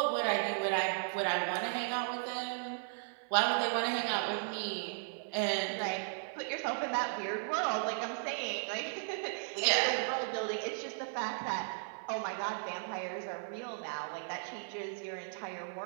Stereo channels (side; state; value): left; silent; 54 dB below the other